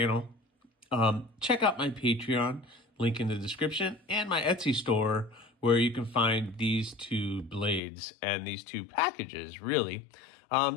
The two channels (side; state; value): right; drops out; at 7.8 s